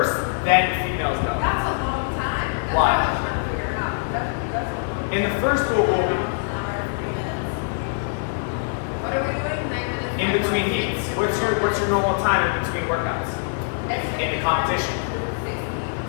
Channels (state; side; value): silent; right; digital silence